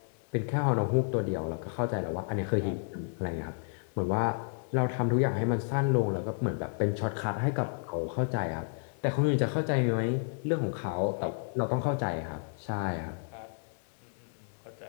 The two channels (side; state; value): right; silent; 57 dB below the other